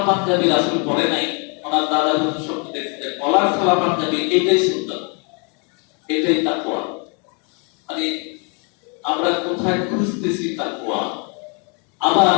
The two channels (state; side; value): quieter; right; 36.2 dB